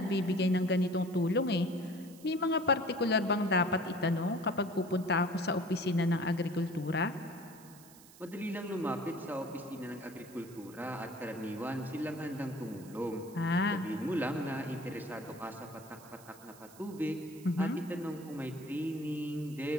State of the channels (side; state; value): right; noise; hiss, 21 dB below the sound